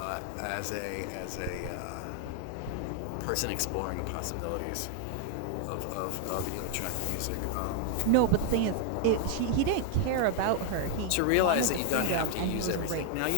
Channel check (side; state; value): both; different; correlation 0.00